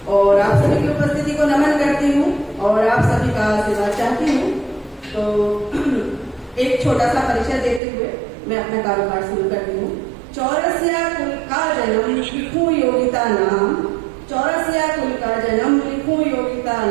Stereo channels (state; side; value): drops out; left; at 7.8 s